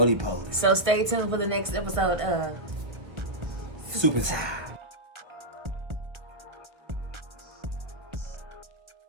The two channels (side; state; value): left; late; 1.3 ms